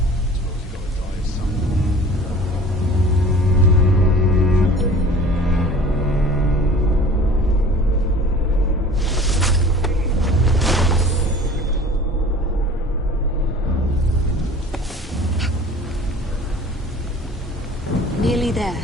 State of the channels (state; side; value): normal; both; correlation 0.45